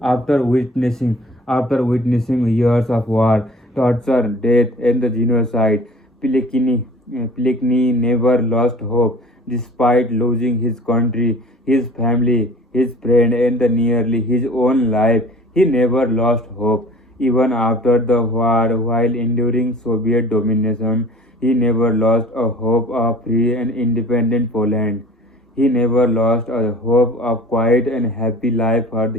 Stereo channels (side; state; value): both; normal; correlation 0.46